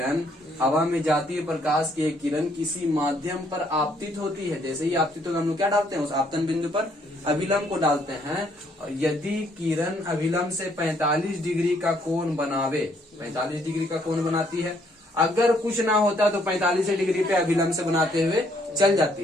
हवा में जाती हुई प्रकाश की एक किरण किसी माध्यम पर आपतित होती है। जैसे ही आपतित होगा हम लोग क्या डालते हैं? उस आपतन बिंदु पर अभिलंब को डालते हैं। और यदि किरण अभिलंब से 45 डिग्री का कोण बनावे, 45 डिग्री का कोण बनाती है, अगर कुछ ना होता तो 45 डिग्री पे अभिलंब से बनाते हुए चल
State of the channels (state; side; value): normal; both; correlation 0.68